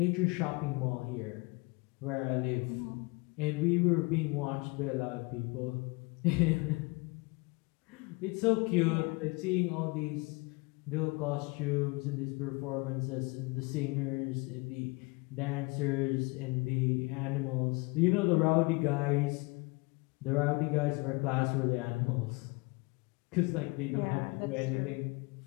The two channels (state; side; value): quieter; right; 27.0 dB